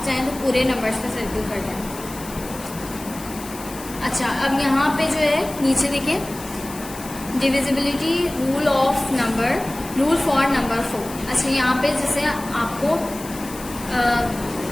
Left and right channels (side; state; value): left; noise; hiss, 15 dB below the sound